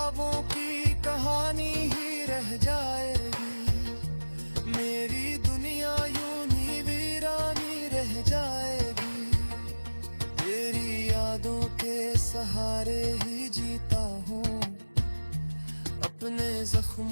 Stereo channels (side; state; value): both; inverted; correlation -1.00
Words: की कहानी ही रह जाएगी, मेरी दुनिया यूं ही वीरानी रह जाएगी। तेरी यादों के सहारे ही जीता हूँ, अपने